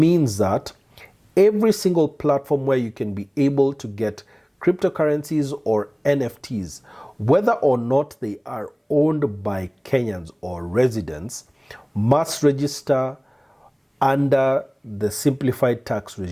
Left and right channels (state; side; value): identical; both; correlation 1.00